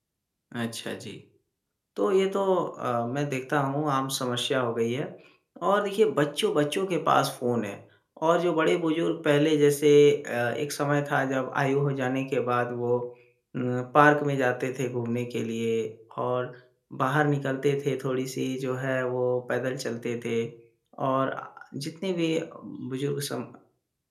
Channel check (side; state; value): both; identical; correlation 1.00